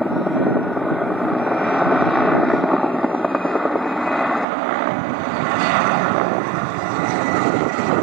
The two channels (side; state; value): left; drops out; at 4.5 s